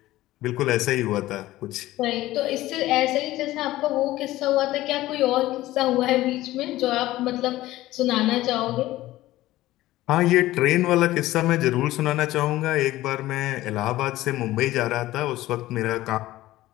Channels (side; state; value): right; quieter; 16.3 dB